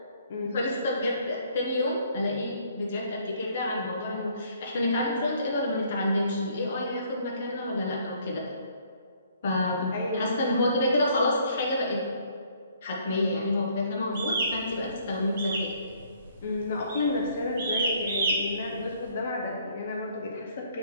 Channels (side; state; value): both; inverted; correlation -0.63